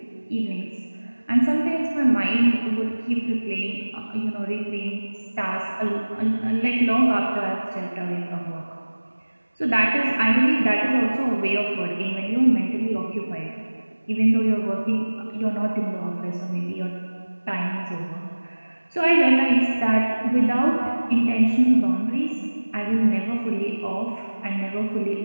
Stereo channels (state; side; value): inverted; both; correlation -1.00